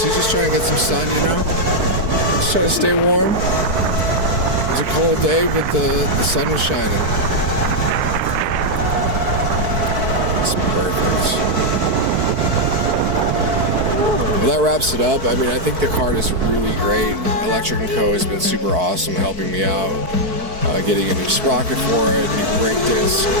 trying to get some sun, you know. Just trying to stay warm. It was a cold day, but the sun was shining. It's perfect. Well, that wraps it up. I mean, I think the Kart is really great. Electro Co has been super awesome helping me out. Getting a new sprocket for it, new brake disc.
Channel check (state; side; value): late; left; 4.6 ms